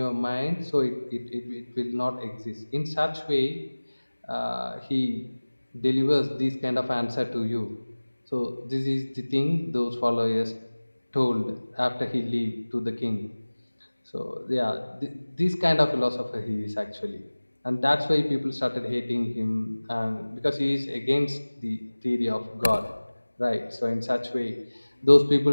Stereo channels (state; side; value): inverted; both; correlation -1.00